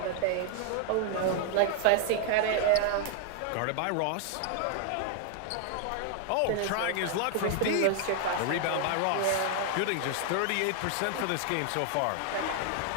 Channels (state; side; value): different; both; correlation 0.00